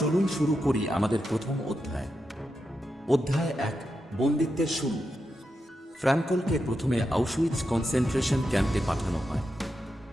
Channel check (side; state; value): both; normal; correlation 0.87